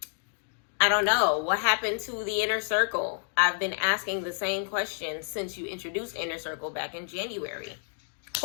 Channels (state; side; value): silent; right; digital silence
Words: don't know. What happened to the inner circle? I've been asking the same question since you introduced inner circle back in January.